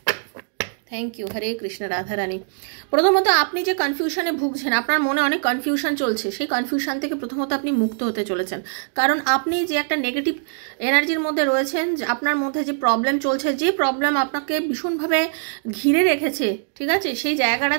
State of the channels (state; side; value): silent; left; digital silence